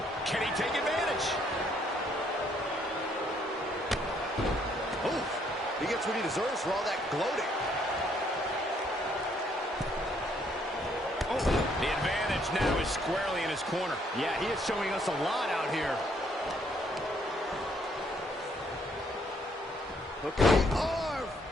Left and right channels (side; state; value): both; normal; correlation 0.68